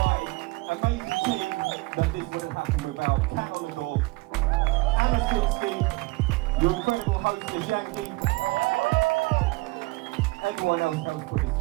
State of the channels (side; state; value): left; quieter; 23.2 dB